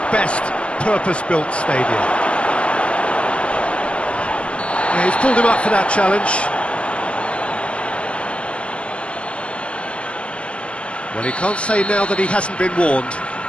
best purpose-built stadia. Yeah, he's pulled him up for that challenge. Well, he can't say now that he hasn't been warned.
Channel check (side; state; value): right; late; 0.060 ms